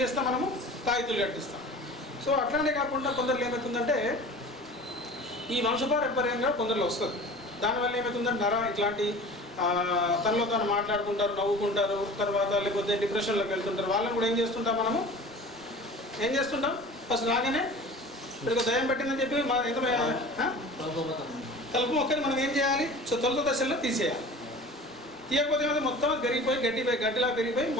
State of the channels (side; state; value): both; normal; correlation 0.40